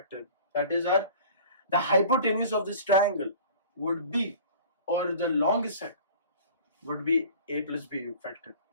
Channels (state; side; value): inverted; both; correlation -0.44